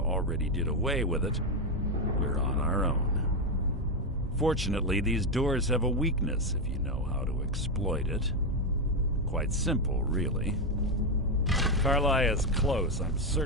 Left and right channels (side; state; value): both; normal; correlation 0.07